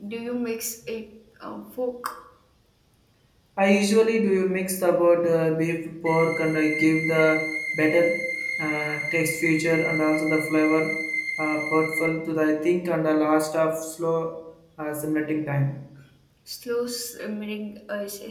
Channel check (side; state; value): both; identical; correlation 1.00